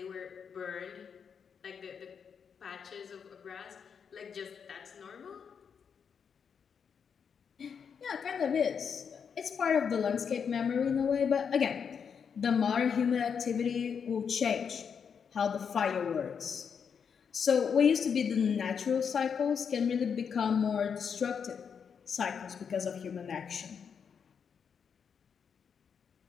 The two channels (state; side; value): quieter; right; 6.8 dB